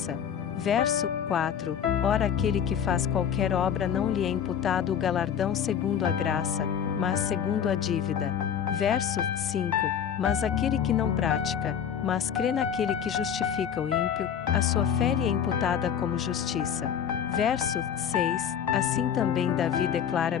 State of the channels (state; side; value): quieter; right; 8.4 dB